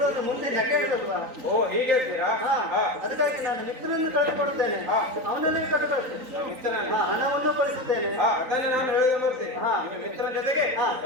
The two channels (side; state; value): left; late; 3.9 ms